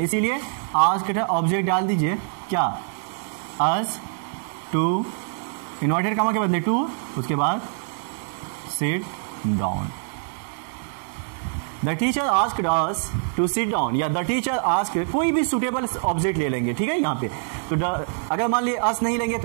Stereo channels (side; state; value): left; silent; 62 dB below the other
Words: इसीलिए आस्क्ड ऑब्जेक्ट डाल दीजिए। क्या? अस टू, इन्वर्टेड कामा के बदले टू, उसके बाद sit down. The teacher asked us to sit down, या द टीचर आस्क्ड, कोई भी सुटेबल ऑब्जेक्ट ले लेंगे। ठीक है, यहाँ पे तो अगर मान लीजिए अस नहीं लेंगे